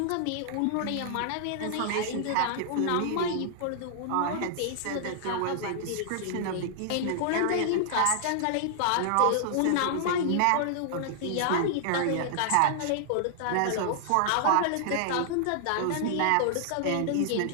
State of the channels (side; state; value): both; different; correlation -0.01